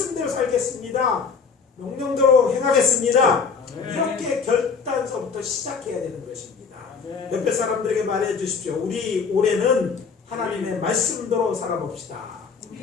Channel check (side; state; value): right; quieter; 5.5 dB